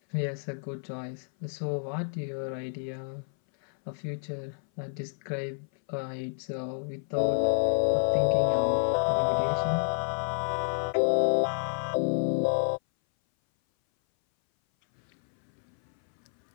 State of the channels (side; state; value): right; silent; 58 dB below the other